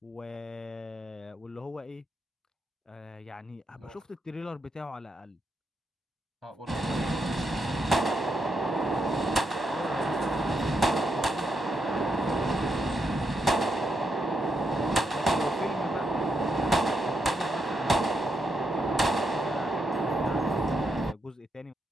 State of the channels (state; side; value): normal; both; correlation 0.81